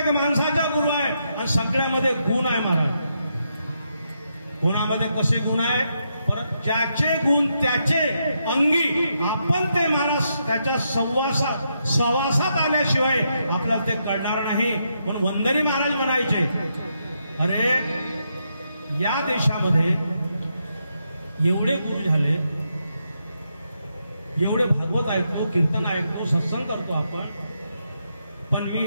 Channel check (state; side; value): inverted; both; correlation -0.81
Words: माणसाचा गुरु आहे. आणि सगळ्यामध्ये गुण आहे महाराज. गुणामध्ये कसे गुण आहे, परत ज्याचे गुण त्याचे अंगी आपण ते महाराज त्याच्या सहवासात आल्याशिवाय आपल्याला ते कळणार नाही. म्हणून वंदनी महाराज म्हणायचे, अरे या देशामध्ये एवढे गुरु झाले, एवढे भागवत ऐकतो, कीर्तन ऐकतो, सत्संग करतो आपण. पण